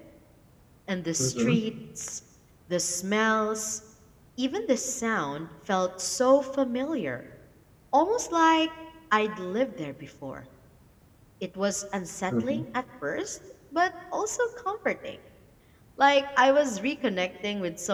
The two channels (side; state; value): both; identical; correlation 1.00